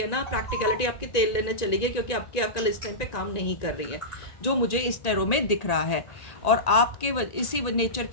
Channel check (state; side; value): late; right; 1.9 ms